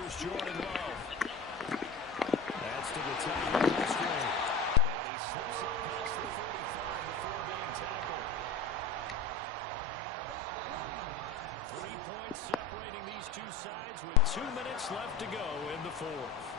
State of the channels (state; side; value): quieter; right; 3.4 dB